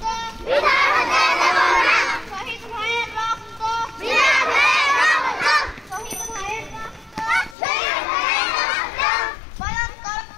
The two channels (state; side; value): drops out; right; at 7.6 s